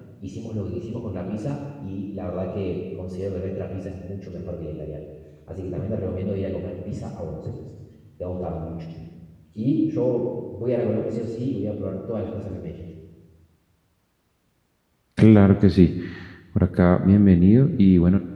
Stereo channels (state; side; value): identical; both; correlation 1.00